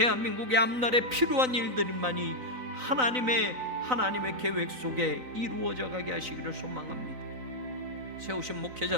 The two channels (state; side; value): late; left; 3.9 ms